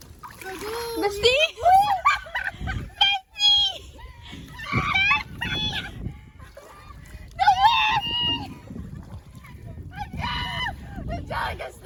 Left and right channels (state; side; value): identical; both; correlation 1.00